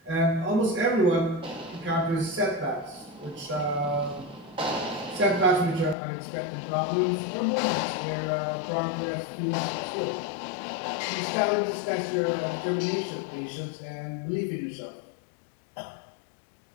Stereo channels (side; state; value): right; drops out; at 6.0 s